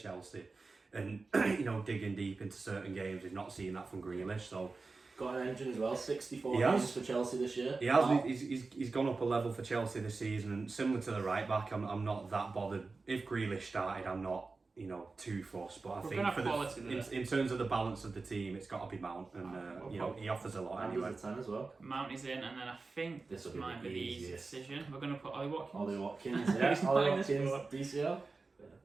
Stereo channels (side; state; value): left; quieter; 3.9 dB